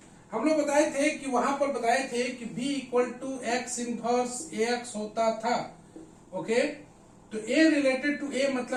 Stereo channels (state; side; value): identical; both; correlation 1.00